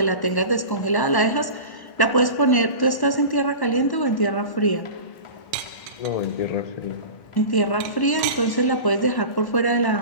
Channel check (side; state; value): right; late; 1.1 ms